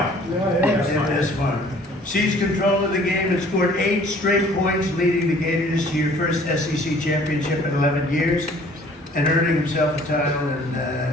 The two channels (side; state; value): both; normal; correlation 0.54